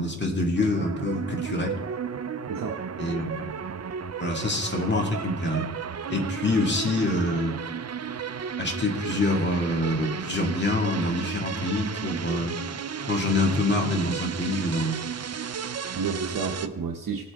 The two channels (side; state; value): both; normal; correlation 0.43